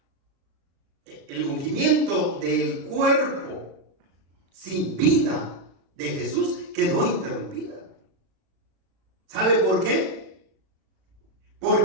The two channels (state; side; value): late; left; 36 ms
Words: el ungimiento del cuerpo sin vida de Jesús quedó interrumpida. ¿Sabe por qué?